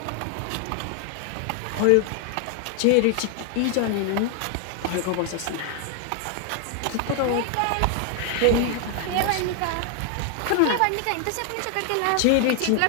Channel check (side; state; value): both; different; correlation 0.00